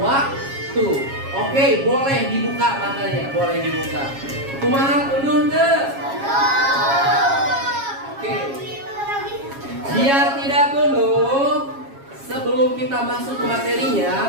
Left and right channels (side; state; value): left; late; 7.3 ms